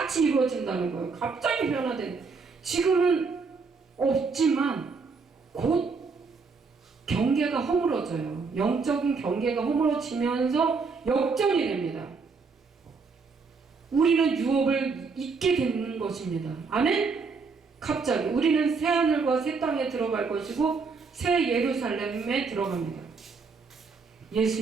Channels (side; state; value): left; quieter; 4.8 dB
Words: 이루어진다는 거예요. 갑자기 변화된. 지금은 없지만 곧 경계가 허물어져요. 영적인 경계가 허물어지면서 역전이 됩니다. 우리는 유업을 잊게 되는 것입니다. 아멘? 갑자기 우리는 새 하늘과 새 땅에 들어갈 것이고 새 예루살렘에 들어갑니다.